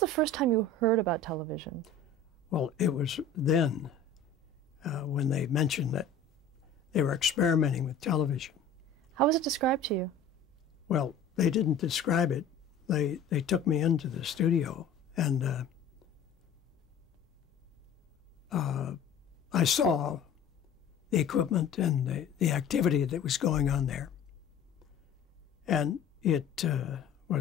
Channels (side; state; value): right; quieter; 4.3 dB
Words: first time you heard about television? Well, it was then when they mentioned that they were experimenting with television. How was it described to you? Well, they didn't describe it. They took me into the studio, and I saw the equipment and the activity that was going on there. And it